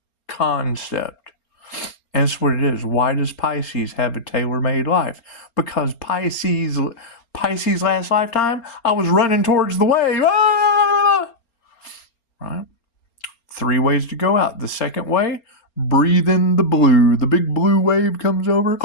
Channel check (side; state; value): right; late; 4.3 ms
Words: concept. And that's what it is. Why does Pisces have a tailor-made life? Because Pisces last lifetime, I was running towards the wave. Right? 3 ways to go out. The second way, breathe in the blue. The big blue wave comes over.